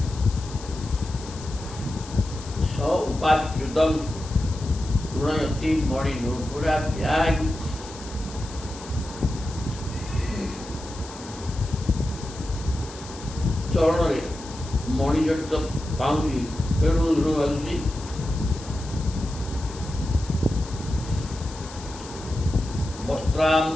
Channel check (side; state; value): left; noise; hiss, 16 dB below the sound